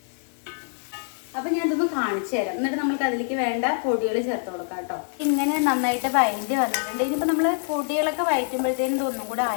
അപ്പം ഞാൻ ഇതൊന്ന് കാണിച്ചു തരാം. എന്നിട്ട് നമുക്ക് അതിലേക്ക് വേണ്ട പൊടികൾ ചേർത്ത് കൊടുക്കാം കേട്ടോ. ഇങ്ങനെ നന്നായിട്ട് വഴറ്റി വന്നിട്ടുണ്ട്. ഇനിയിപ്പോൾ നമ്മൾ പൊടികളൊക്കെ വഴറ്റുമ്പോഴത്തേനും ഇതൊന്നും കൂടെ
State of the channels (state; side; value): silent; right; 55 dB below the other